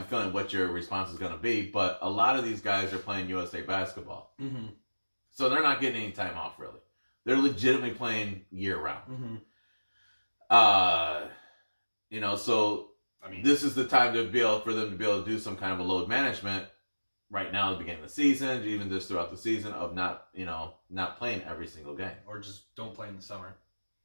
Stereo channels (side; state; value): both; inverted; correlation -1.00